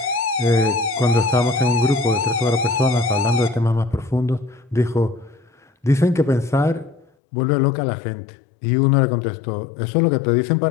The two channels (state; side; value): drops out; right; at 7.1 s